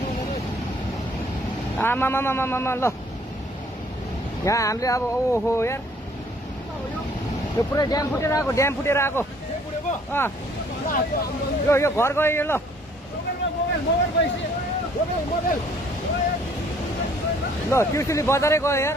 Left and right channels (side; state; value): both; normal; correlation 0.60